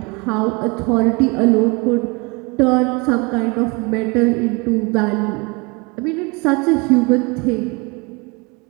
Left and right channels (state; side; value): quieter; left; 28.5 dB